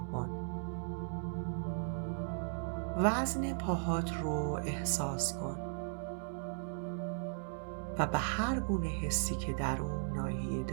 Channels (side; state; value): left; silent; 53 dB below the other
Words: کن. وزن پاهات رو احساس کن و به هر گونه حسی که در اون ناحیه